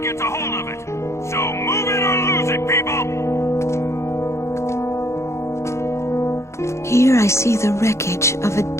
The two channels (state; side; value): late; right; 0.14 ms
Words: a hold of it. So move it or lose it, people! Here I see the wreckage of a